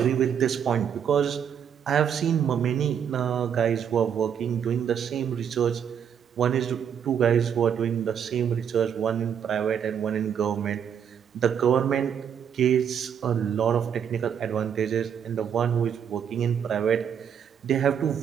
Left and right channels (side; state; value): left; quieter; 8.2 dB